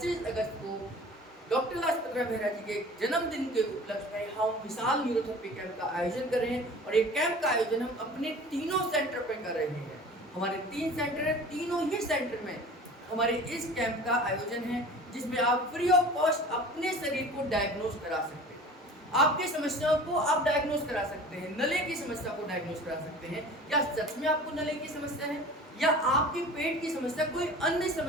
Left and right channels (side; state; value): both; normal; correlation 0.42